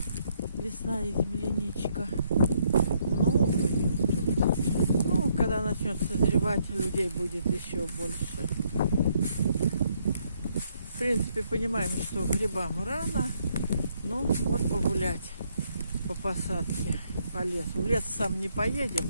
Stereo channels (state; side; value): inverted; both; correlation -0.72